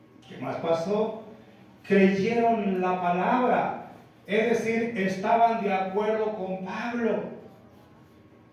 ¿Qué más pasó? Creyeron la palabra, es decir, estaban de acuerdo con Pablo.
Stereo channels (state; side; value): identical; both; correlation 1.00